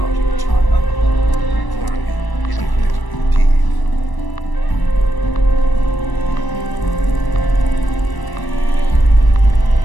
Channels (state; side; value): late; right; 1.0 ms